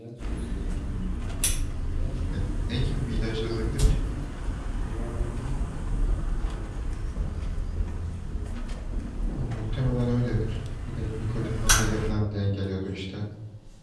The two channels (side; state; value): both; identical; correlation 1.00